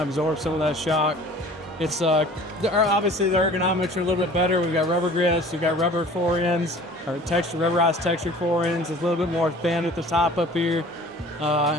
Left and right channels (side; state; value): both; normal; correlation 0.46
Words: absorb some of that shock. It's obviously the ergonomics are a little bit better. We've got rubber grips, we've got rubber forends, or rubberized textured forends. It's a little bit more thin at the top up here.